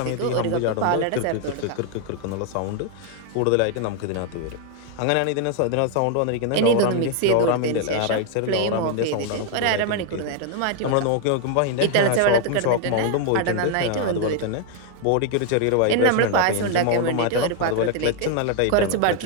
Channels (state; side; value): different; both; correlation 0.00